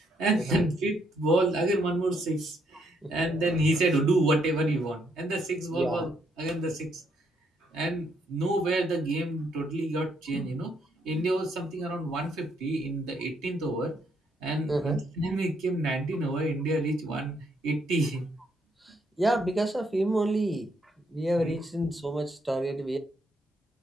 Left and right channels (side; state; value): both; normal; correlation 0.73